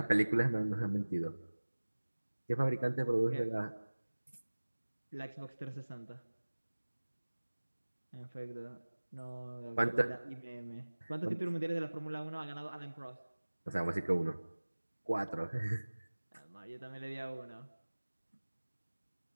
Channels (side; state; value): both; inverted; correlation -1.00